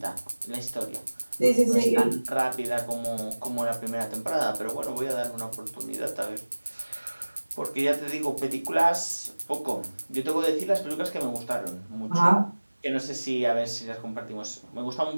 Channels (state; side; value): inverted; both; correlation -1.00